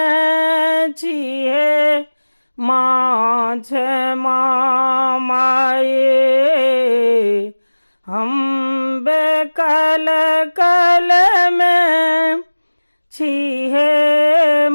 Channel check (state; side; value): inverted; both; correlation -1.00